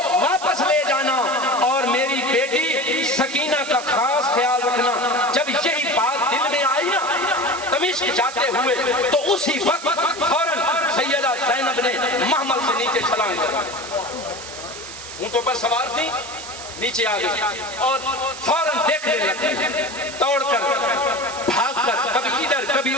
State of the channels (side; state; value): right; noise; hiss, 12 dB below the sound